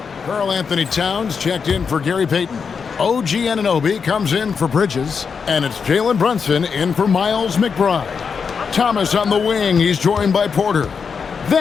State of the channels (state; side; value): quieter; right; 5.9 dB